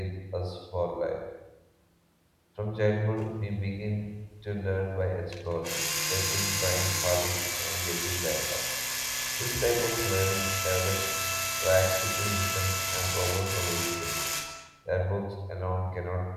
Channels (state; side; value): identical; both; correlation 1.00